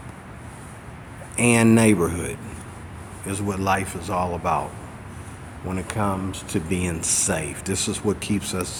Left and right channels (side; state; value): both; identical; correlation 1.00